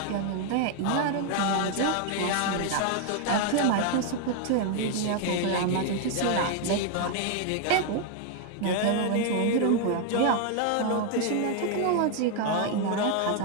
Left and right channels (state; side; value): different; both; correlation 0.01